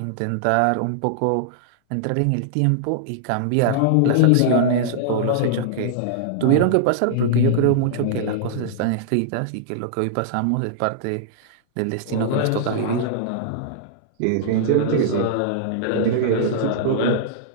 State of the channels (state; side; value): different; both; correlation -0.01